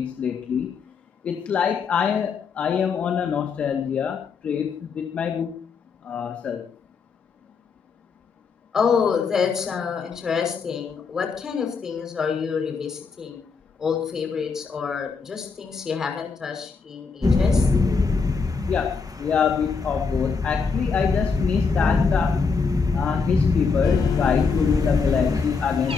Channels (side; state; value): right; quieter; 5.2 dB